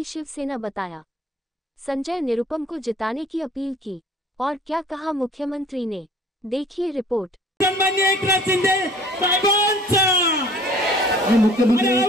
शिवसेना बताया। संजय निरुपम को जिताने की अपील की और क्या कहा मुख्यमंत्री ने, देखिए रिपोर्ट। सन्माननीय एकनाथ शिंदे साहेबांचा मुख्यमंत्री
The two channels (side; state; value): both; normal; correlation 0.52